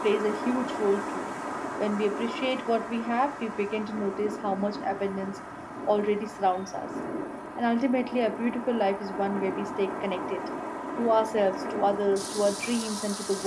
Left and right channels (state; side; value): identical; both; correlation 1.00